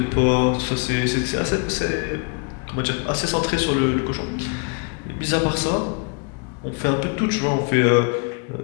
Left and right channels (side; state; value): right; quieter; 35.7 dB